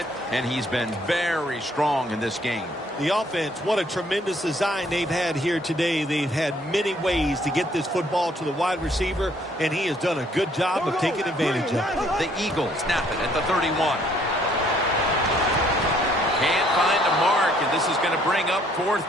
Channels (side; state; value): both; normal; correlation 0.64